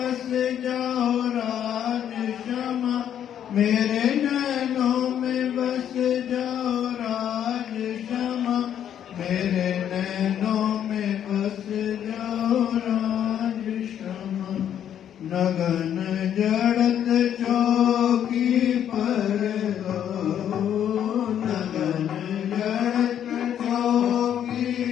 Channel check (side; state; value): right; quieter; 9.8 dB